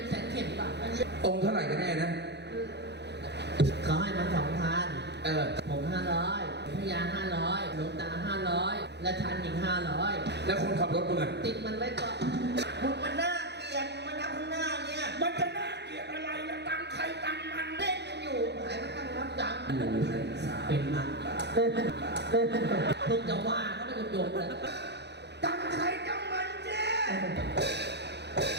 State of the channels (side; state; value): left; late; 0.50 ms